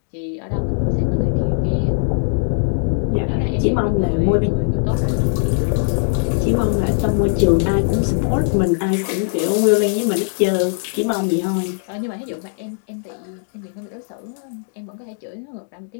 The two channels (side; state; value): right; silent; digital silence